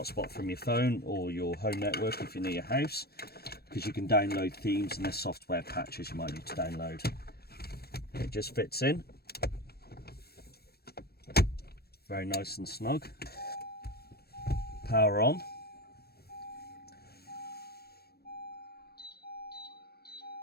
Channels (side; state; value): right; late; 0.46 ms